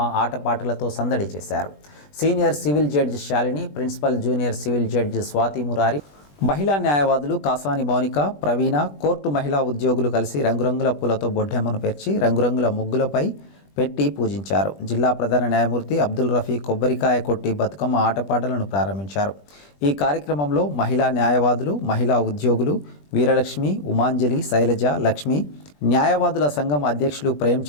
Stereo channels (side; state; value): right; late; 20 ms